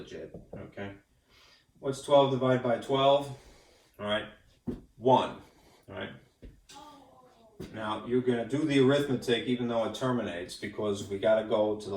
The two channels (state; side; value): identical; both; correlation 1.00